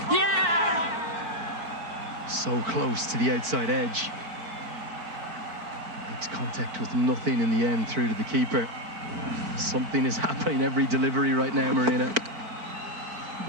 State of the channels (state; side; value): late; left; 4.5 ms